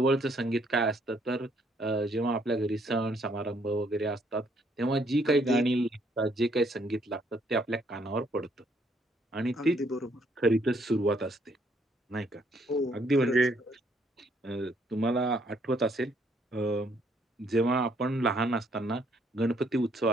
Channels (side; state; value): both; normal; correlation 0.68